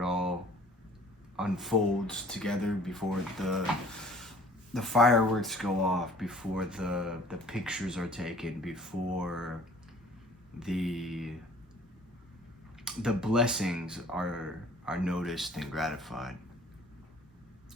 it all unfolds together, before the fireworks go off, before the pictures are taken, before the blessings are noticed and gratified.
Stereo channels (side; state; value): both; normal; correlation 0.52